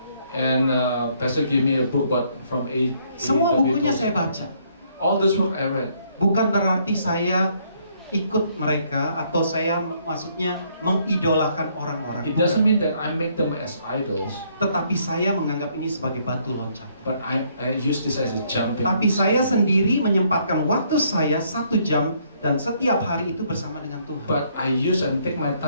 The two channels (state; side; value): inverted; both; correlation -0.68